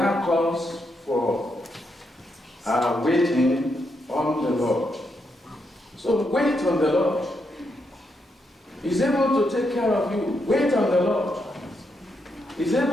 calls for waiting on the Lord. So wait on the Lord. He's able to take care of you. Wait on the Lord. He's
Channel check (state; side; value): normal; both; correlation 0.81